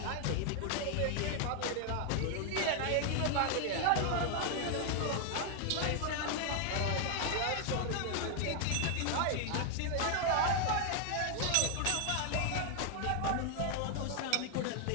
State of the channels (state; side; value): different; both; correlation 0.00